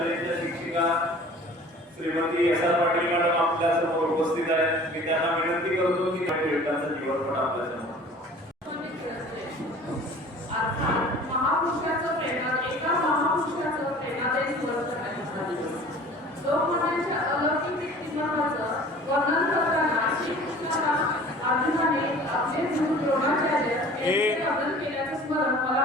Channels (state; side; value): normal; both; correlation 0.46